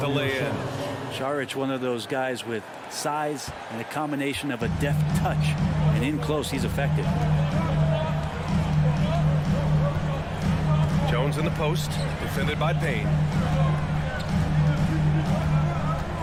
the lay-in. Saric, one of those guys with size and a combination of a deft touch. And in close, he's effective. Jones in the post. Defended by Payne.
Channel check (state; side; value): identical; both; correlation 1.00